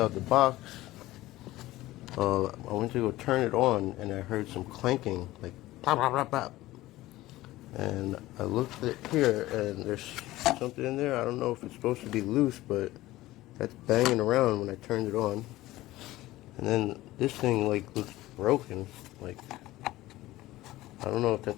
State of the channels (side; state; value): right; quieter; 17.0 dB